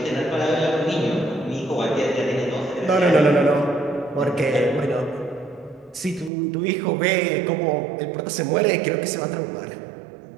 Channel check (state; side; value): drops out; left; at 6.3 s